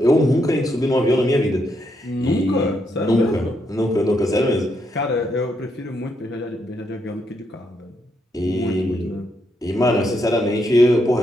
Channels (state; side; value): normal; both; correlation 0.78